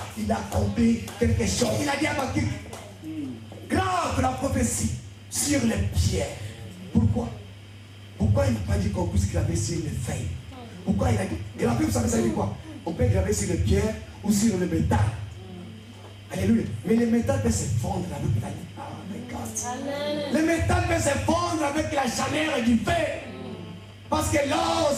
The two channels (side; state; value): both; identical; correlation 1.00